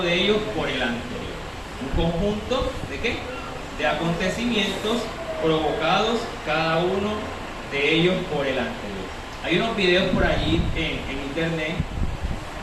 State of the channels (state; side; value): identical; both; correlation 1.00